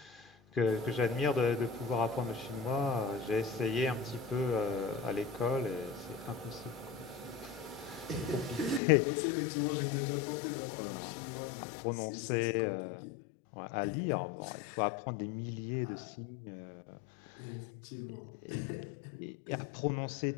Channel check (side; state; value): right; drops out; at 8.8 s